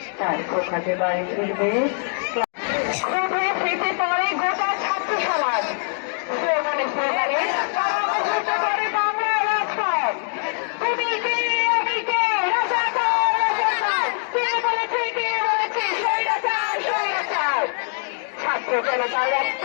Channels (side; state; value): right; silent; 62 dB below the other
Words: তার কোখাতে বাড়ি ফিরবে স্মৃতি পরে গোটা ছাত্র সমাজ স্লোগানে স্লোগানে করে বাংলা রাজপথ। তুমি কে আমি কে, রাজাকার রাজাকার, কে বলেছে কে বলেছে স্বৈরাচার স্বৈরাচার। ছাত্র জনতার রক্ত